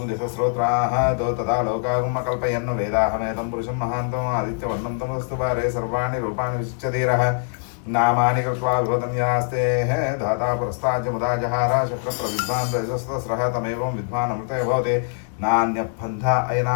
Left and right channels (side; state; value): right; silent; digital silence